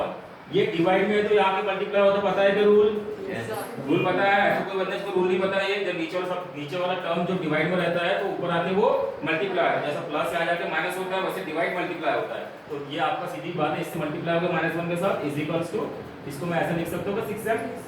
ये डिवाइड में है तो यहां पे मल्टीप्लाई होता, पता है कि रूल, रूल पता है? तो कोई बंदे को रूल नहीं पता है, जब नीचे वाला टर्म जो डिवाइड में रहता है तो ऊपर आके वो मल्टीप्लाई, जैसा प्लस से आ जाके माइनस होता है वैसे डिवाइड मल्टीप्लाई होता है। तो ये आपका सीधी बात है, इससे मल्टीप्लाई होगा -1 के साथ इज इक्वल्स टू, इसको मैं ऐसे लिख सकता हूं 6m,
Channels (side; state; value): both; identical; correlation 1.00